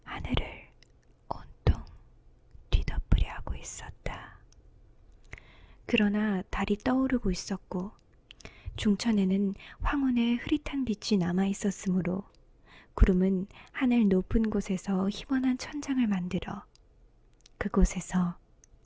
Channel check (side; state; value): both; identical; correlation 1.00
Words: 하늘을 온통 뒤덮으려 하고 있었다. 그러나 달이 떠오르고 있었고 중천에는 황혼의 흐릿한 빛이 남아 있었으므로 구름은 하늘 높은 곳에서 희번한 천장을 만들어 그곳에서